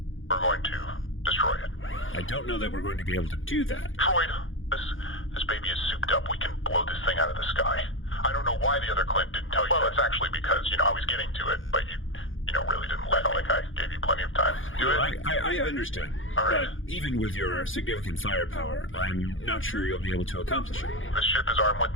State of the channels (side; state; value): right; late; 0.58 ms